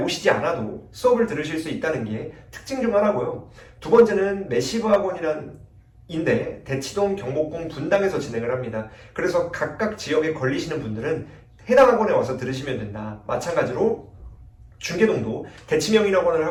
않아도 수업을 들으실 수 있다는 게 특징 중 하나고요. 두 번째는 매시브 학원인데 대치동, 경복궁, 분당에서 진행을 합니다. 그래서 각각 지역에 걸리시는 분들은 해당 학원에 와서 들으시면 된다. 마찬가지로 중계동도 대치명인학원을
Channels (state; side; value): identical; both; correlation 1.00